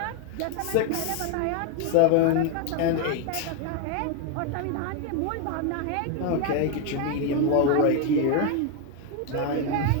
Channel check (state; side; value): different; both; correlation 0.01